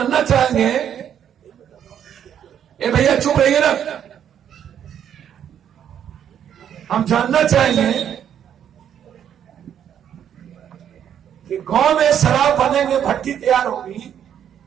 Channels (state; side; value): quieter; left; 9.3 dB